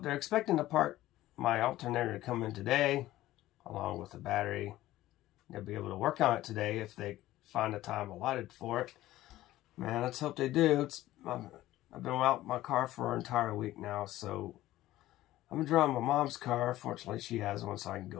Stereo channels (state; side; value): quieter; right; 15.4 dB